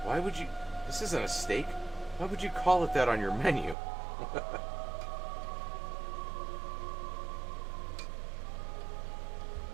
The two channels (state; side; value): drops out; left; at 3.8 s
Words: Why would you... This isn't a steak. Why would you call it that on your menu?